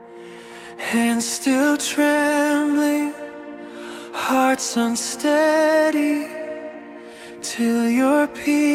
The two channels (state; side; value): identical; both; correlation 1.00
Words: hands still trembling, hearts unsteady, till your